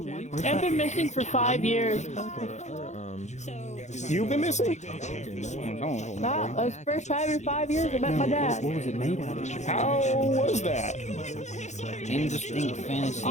I've been missing for 5 years. You've been missing? Nah, that was the first time in 5 years I met my dad. What was it made out of? How was that? Indistinct fantasy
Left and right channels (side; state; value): right; late; 0.34 ms